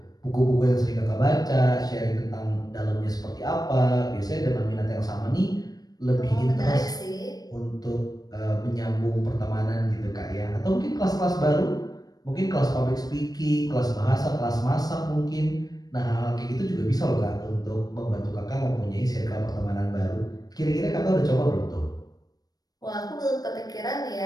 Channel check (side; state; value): right; late; 0.19 ms